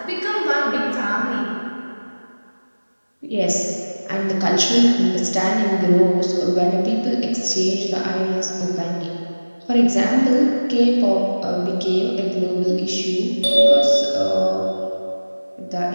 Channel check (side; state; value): both; inverted; correlation -1.00